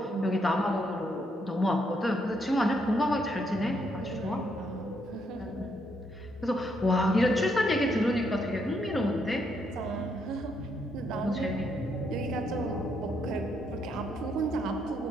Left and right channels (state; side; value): normal; both; correlation 0.75